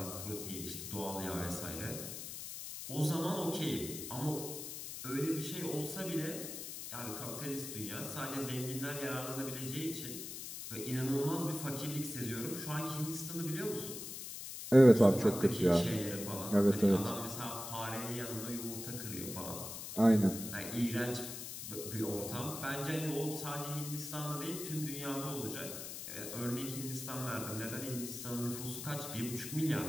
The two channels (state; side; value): noise; left; hiss, 8 dB below the sound